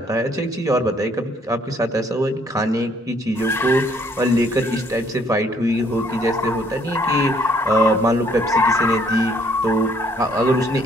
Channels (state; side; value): normal; both; correlation 0.64